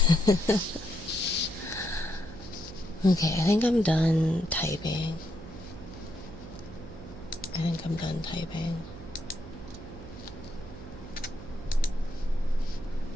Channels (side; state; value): right; noise; hum, 14 dB below the sound